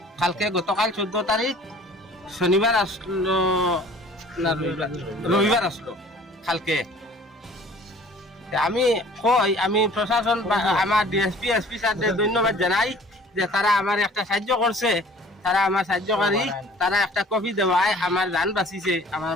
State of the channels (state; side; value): normal; both; correlation 0.50